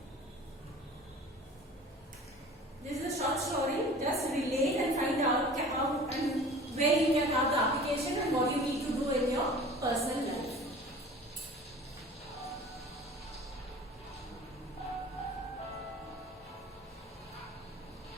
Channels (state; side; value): normal; both; correlation 0.43